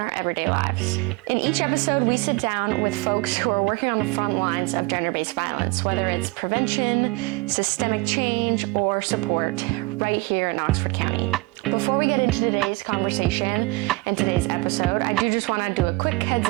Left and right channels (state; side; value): quieter; left; 24.2 dB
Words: everyday lives. In each episode, we sit down with folks who are working on the front lines of gender-based violence, whether it's prevention, systemic change, or support, right here in Oxford County. Before we get into today's conversation and today's episode, I do just want to do a quick heads